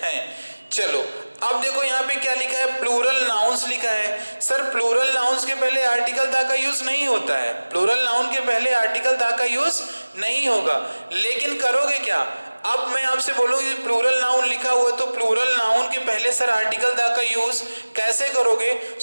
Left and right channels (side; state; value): both; inverted; correlation -1.00